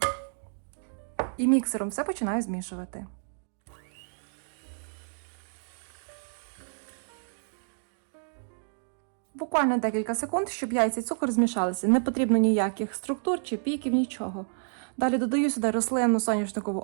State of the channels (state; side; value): silent; left; digital silence